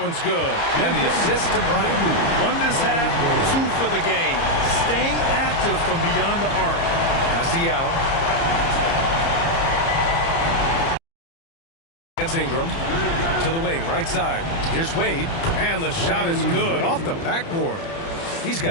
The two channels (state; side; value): late; right; 30 ms